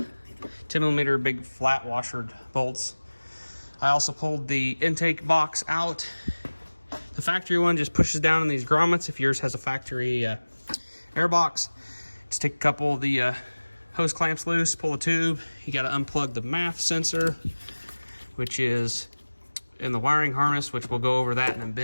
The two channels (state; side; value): inverted; both; correlation -1.00